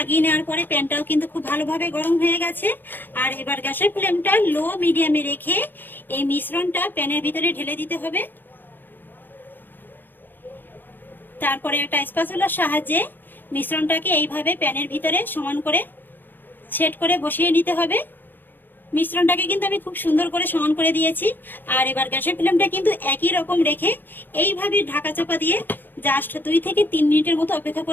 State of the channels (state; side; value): late; right; 0.093 ms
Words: নেওয়ার পরে প্যানটাও কিন্তু খুব ভালোভাবে গরম হয়ে গেছে। আর এবার গ্যাসের ফ্লেমটা লো মিডিয়ামে রেখে এই মিশ্রণটা প্যানের ভিতরে ঢেলে দিতে হবে। তারপরে একটা স্প্যাচুলার সাহায্যে মিশ্রণটাকে এইভাবে প্যানের ভিতরে সমান করে সেট করে বসিয়ে নিতে হবে। মিশ্রণটাকে কিন্তু আমি খুব সুন্দর করে সমান করে দিয়েছি। আর এবার গ্যাসের ফ্লেমটা কিন্তু একই রকম রেখে এইভাবে ঢাকা চাপা দিয়ে জাস্ট 2 থেকে 3 মিনিটের মতো অপেক্ষা